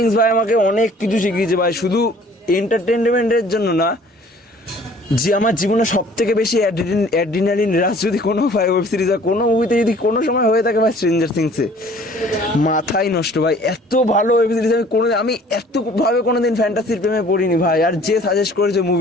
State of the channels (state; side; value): normal; both; correlation 0.53